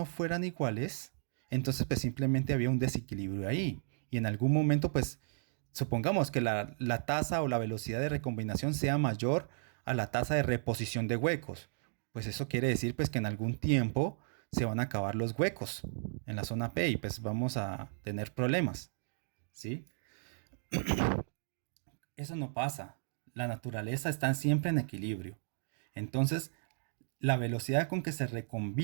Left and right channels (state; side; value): silent; left; digital silence